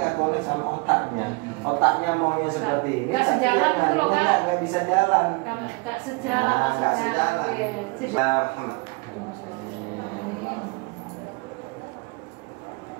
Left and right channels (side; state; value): left; quieter; 28.5 dB